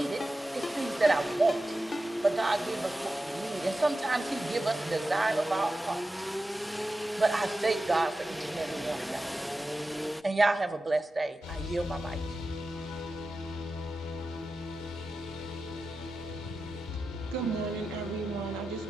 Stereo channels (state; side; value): normal; both; correlation 0.92